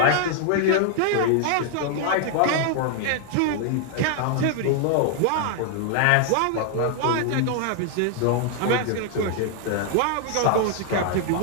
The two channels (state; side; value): different; both; correlation 0.00